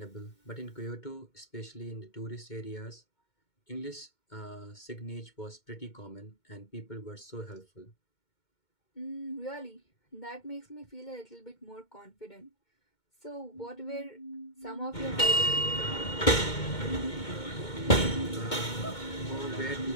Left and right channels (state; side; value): late; right; 2.2 ms